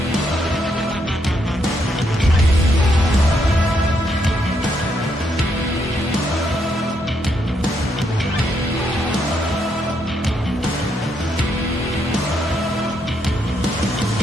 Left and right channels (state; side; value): normal; both; correlation 0.77